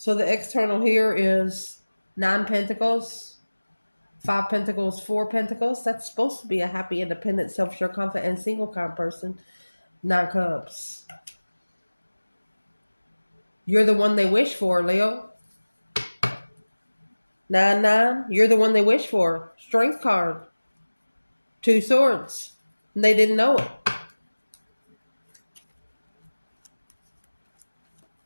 the external here is 9 pentacles, 5 pentacles, 4 pentacles. That's supposed to be a happy, independent, self-sure, confident, and single kind of person. 9 cups. You're the one they wish for, Leo. 9-9. You're the one they wish for. Strength card. 2 swords. And they didn't know it.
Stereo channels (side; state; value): both; inverted; correlation -1.00